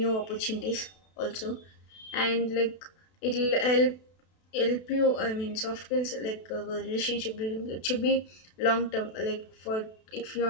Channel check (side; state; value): right; late; 32 ms